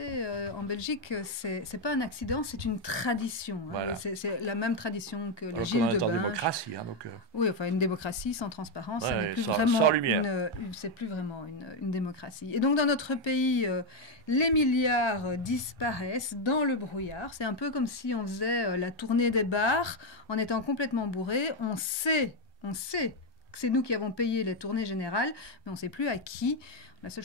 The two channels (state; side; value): normal; both; correlation 0.04